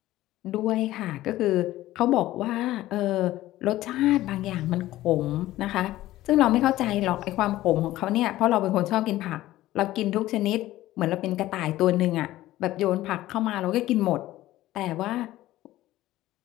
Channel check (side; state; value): right; quieter; 15.6 dB